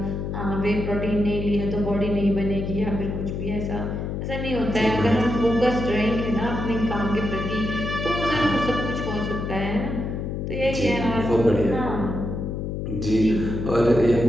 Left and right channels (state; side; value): noise; left; hum, 4 dB below the sound